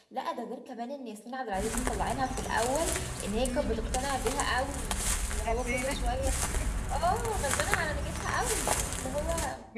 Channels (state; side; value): identical; both; correlation 1.00